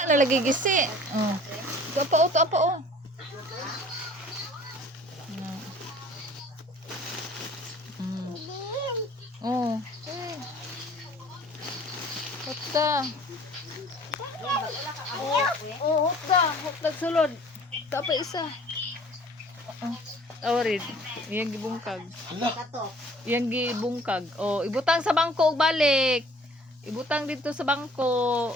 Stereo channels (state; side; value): normal; both; correlation 0.51